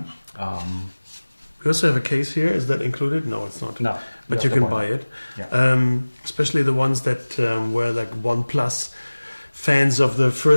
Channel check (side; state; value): both; inverted; correlation -1.00